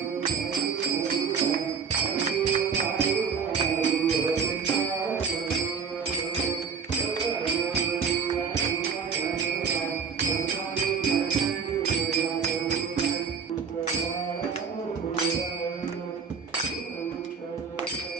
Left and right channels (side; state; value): left; quieter; 6.0 dB